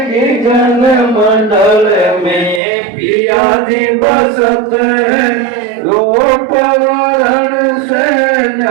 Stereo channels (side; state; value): left; drops out; at 2.6 s